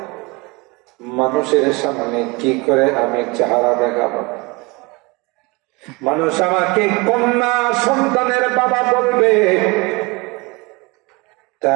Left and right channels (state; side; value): quieter; left; 26.1 dB